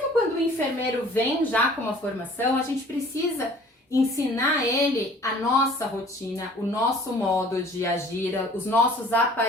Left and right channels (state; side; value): normal; both; correlation 0.51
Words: quando o enfermeiro vem já com uma formação, a gente precisa ensinar ele a nossa rotina, o nosso modo de agir, os nossos